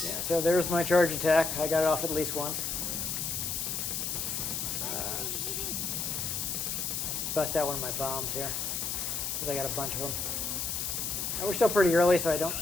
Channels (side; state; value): left; noise; hiss, 2 dB below the sound